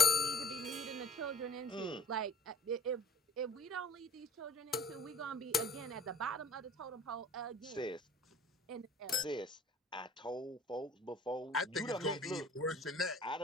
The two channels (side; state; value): both; normal; correlation 0.48